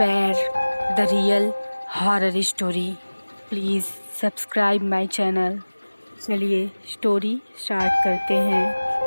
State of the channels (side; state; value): both; inverted; correlation -1.00